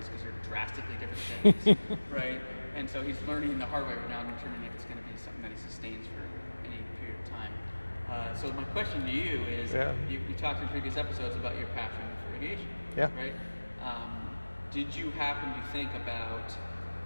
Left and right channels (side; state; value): both; inverted; correlation -1.00